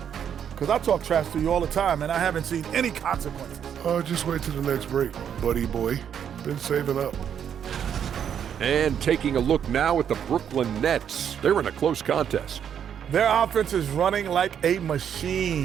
because I talk trash to you all the time, and I haven't seen any consequences. Just wait till the next break, buddy boy. Been saving up. And taking a look now at the Brooklyn Nets. They're in a close contest. Their offense is running like a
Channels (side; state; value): left; quieter; 8.6 dB